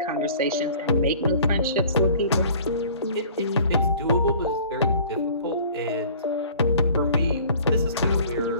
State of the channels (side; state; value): both; inverted; correlation -0.49